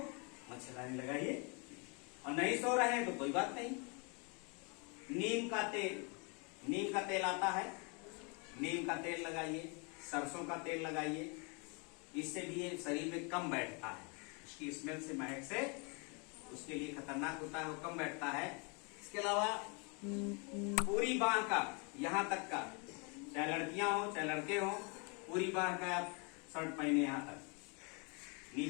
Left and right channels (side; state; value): right; quieter; 33.5 dB